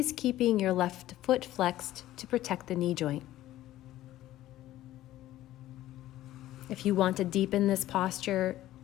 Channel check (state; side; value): quieter; right; 14.5 dB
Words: keeping your left foot flexed to protect the knee joint. If you want to deepen this posture,